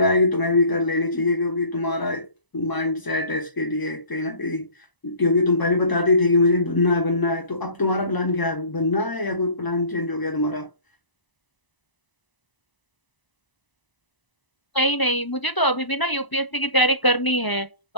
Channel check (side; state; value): right; late; 1.0 ms